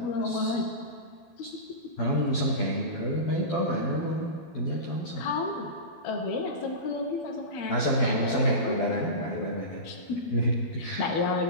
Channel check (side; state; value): right; late; 12 ms